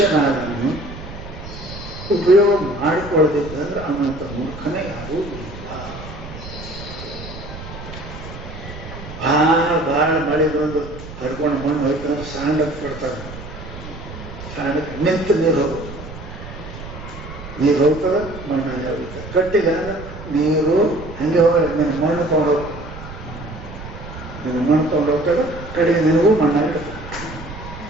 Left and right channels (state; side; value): noise; right; rumble, 12 dB below the sound